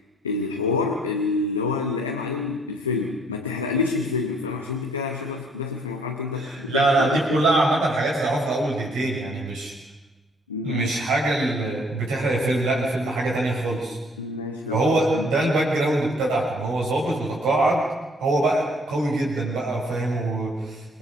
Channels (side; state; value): both; normal; correlation 0.62